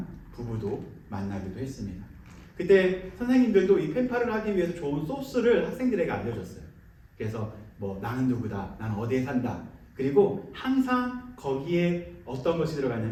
부부도 만나기도 했습니다. 그때 선생님들도 이 펜팔을 하기 위해서 좋은 소스를 학생들에게 알려줬어요. 그래서 뭐 나는 누구다, 나는 어디에 산다. 그리고 항상 거기에 어떤 것이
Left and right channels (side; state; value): both; identical; correlation 1.00